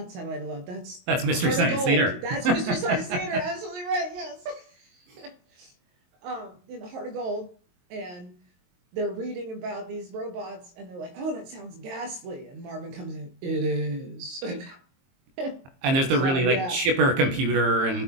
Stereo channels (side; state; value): left; late; 22 ms